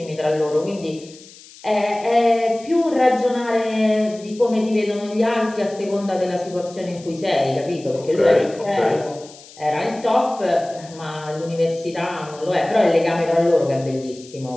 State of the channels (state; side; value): noise; left; hiss, 21 dB below the sound